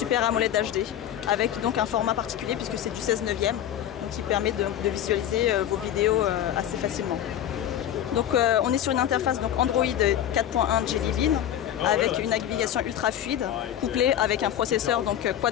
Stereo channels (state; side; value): quieter; right; 10.9 dB